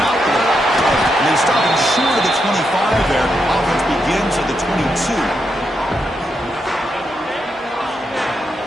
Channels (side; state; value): both; normal; correlation 0.82